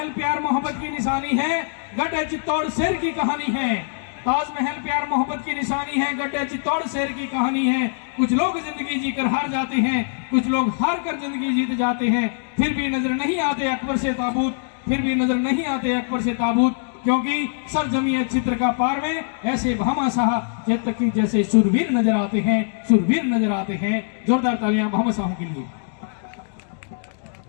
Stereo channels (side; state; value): right; silent; digital silence